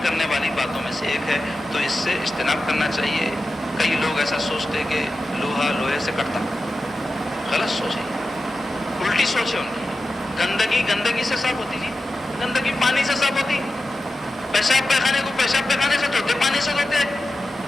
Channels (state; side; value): normal; both; correlation 0.93